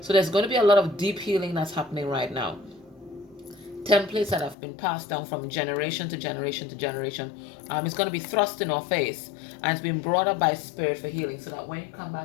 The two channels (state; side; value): drops out; right; at 4.5 s